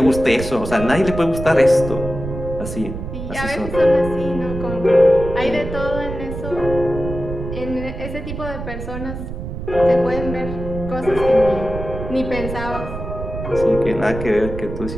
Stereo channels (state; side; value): noise; right; rumble, 8 dB below the sound